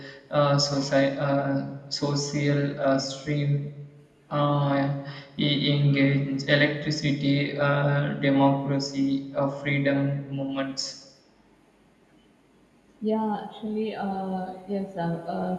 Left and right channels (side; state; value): both; identical; correlation 1.00